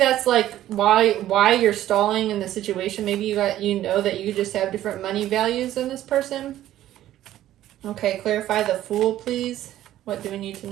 like why you're stalling in the situation. Maybe you know that you just have different money values than this person. Okay, clarify the Fool, please. What do we need to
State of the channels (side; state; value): left; quieter; 13.2 dB